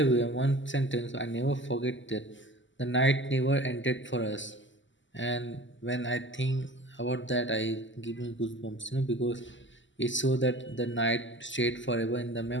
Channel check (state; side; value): late; right; 0.54 ms